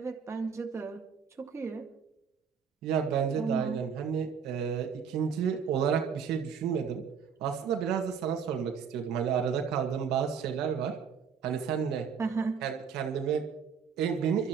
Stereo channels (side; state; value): left; quieter; 6.8 dB